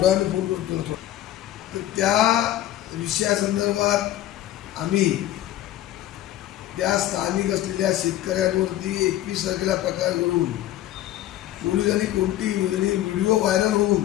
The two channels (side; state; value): right; quieter; 13.4 dB